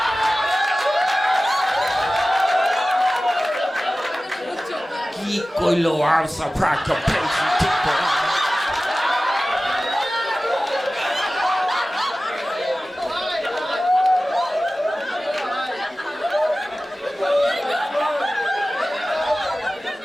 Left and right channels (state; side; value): normal; both; correlation 0.96